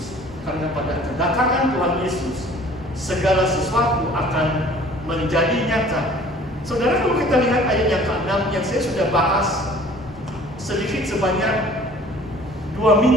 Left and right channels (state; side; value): normal; both; correlation 0.50